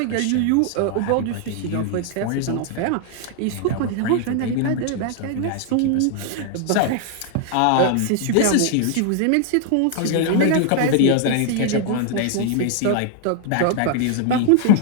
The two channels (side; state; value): both; different; correlation 0.00